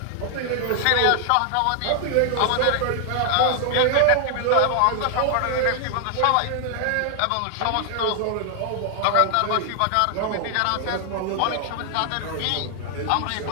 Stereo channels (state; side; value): different; both; correlation 0.00